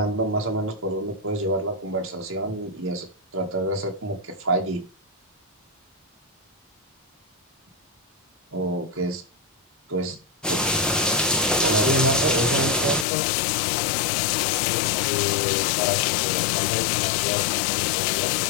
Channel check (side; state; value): right; drops out; at 13.1 s